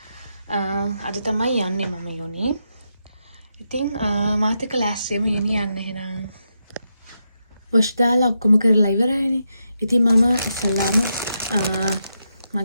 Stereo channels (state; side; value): inverted; both; correlation -0.84